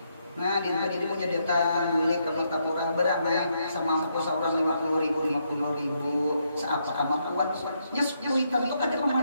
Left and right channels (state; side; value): inverted; both; correlation -0.77